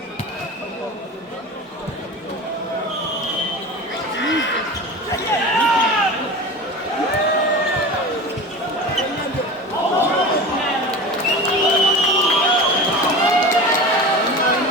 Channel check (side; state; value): both; normal; correlation 0.32